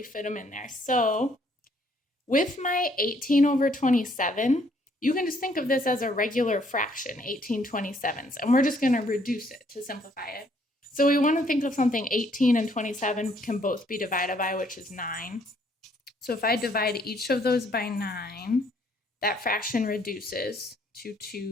fit them in there. So with my 18 over 27, you can just think of this as a regular fraction, 18/27s, and we're just going to reduce it to simplify it. So we want to think of something 18 and 27 can both be divided by, which is 9. So if I divide each of those by 9, that fraction reduces to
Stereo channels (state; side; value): normal; both; correlation 0.66